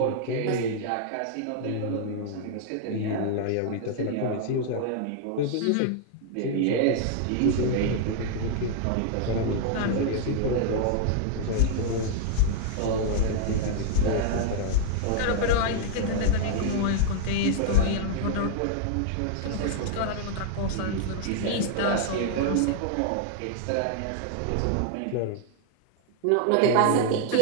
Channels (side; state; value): both; different; correlation 0.00